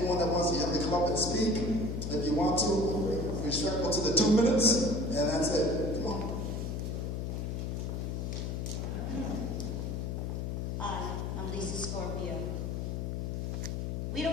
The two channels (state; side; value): noise; left; hum, 2 dB below the sound